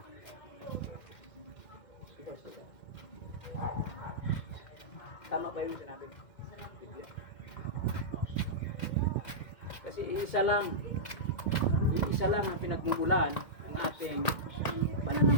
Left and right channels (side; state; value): right; late; 2.1 ms